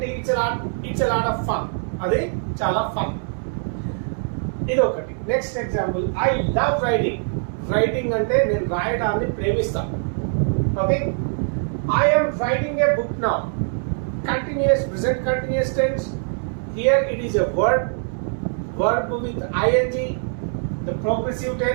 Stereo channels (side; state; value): left; silent; 64 dB below the other